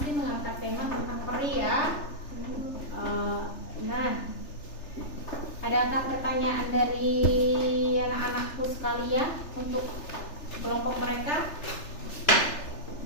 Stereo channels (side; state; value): right; late; 3.4 ms